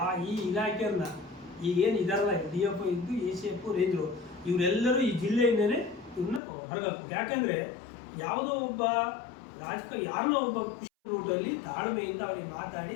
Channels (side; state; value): right; drops out; at 6.4 s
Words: ಈ ಇಲಾಖೆಯನ್ನ ಈಗೇನು ಇದಾರಲ್ಲ DF ಇದ್ದು ACF ರೇಂಜರು ಇವರೆಲ್ಲರೂ ಈ ಜಿಲ್ಲೆಯಿಂದಲೇ ಇವ್ರನ್ನ ಹೊರಗಾಕ್ಬೇಕು. ಯಾಕೆಂದರೆ ಯಾವುದೋ ಒಬ್ಬ ಯಾರನ್ನೋ ಒಬ್ಬ ರೂಟಲ್ಲಿ ತಾಳ್ಮೆಯಿಂದ ಅವ್ರಿಗೆ ಮಾತಾಡಿ